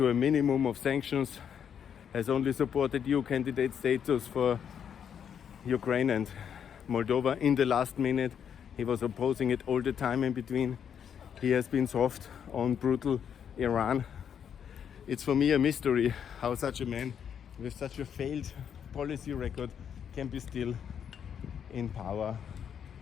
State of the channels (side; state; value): right; quieter; 8.2 dB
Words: a minimum of sanctions, has only supported EU candidate status for Ukraine and Moldova in the last minute. He was opposing it all the time in between. He has been soft on brutal Iran. It's for me a mystery how such a man with such a failed policy record can be still in power